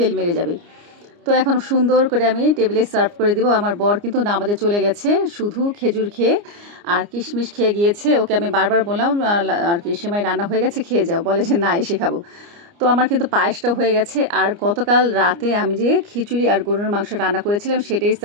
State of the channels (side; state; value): left; late; 29 ms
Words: মেরে যাবে। তো এখন সুন্দর করে আমি টেবিলে সার্ভ করে দিব। আমার বর কিন্তু নামাজে চলে গেছে, শুধু খেজুর খেয়ে আর কিশমিশ খেয়ে গিয়েছে। ওকে আমি বারবার বললাম আর কি সেমাই রান্না হয়ে গেছে, খেয়ে যাও, বলে যে না এসে খাবো। তো আমার কিন্তু পায়েসটা হয়ে গেছে। আর গতকাল রাতে আমি যে খিচুড়ি আর গরুর মাংস রান্না করেছিলাম সেটাই